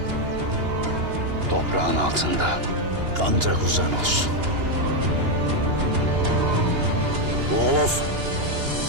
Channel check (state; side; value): late; left; 2.9 ms